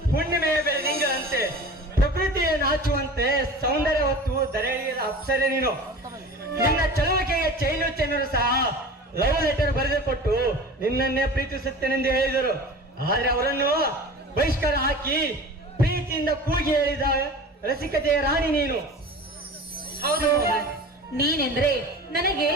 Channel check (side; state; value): both; normal; correlation 0.37